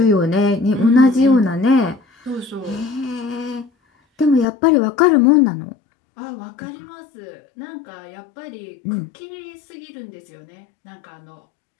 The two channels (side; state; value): right; drops out; at 4.5 s